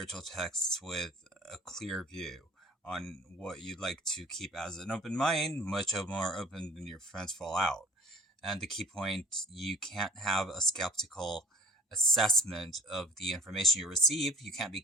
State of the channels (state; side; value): normal; both; correlation 0.48